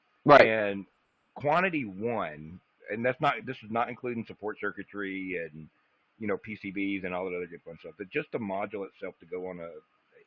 Right. And quantity 1, and this is not including support circuitry and PCBs and all that other good fun stuff. But just the module itself to go on a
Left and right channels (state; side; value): identical; both; correlation 1.00